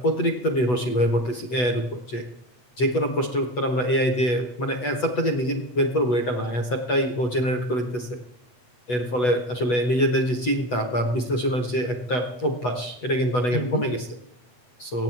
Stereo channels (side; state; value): right; late; 8.1 ms